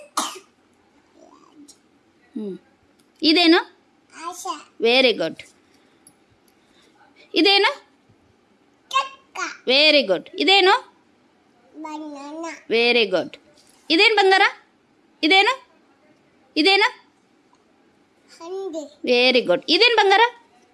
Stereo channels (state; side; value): identical; both; correlation 1.00